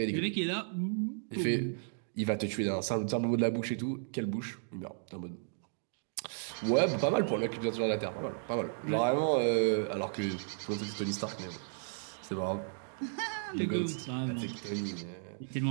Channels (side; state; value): left; silent; digital silence